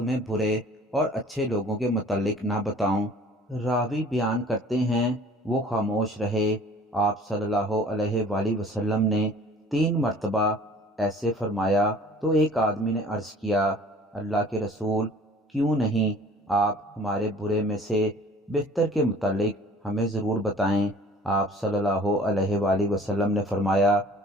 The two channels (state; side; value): normal; both; correlation 0.49